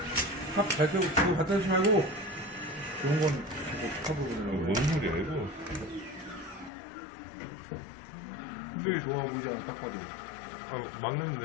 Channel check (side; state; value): right; drops out; at 6.7 s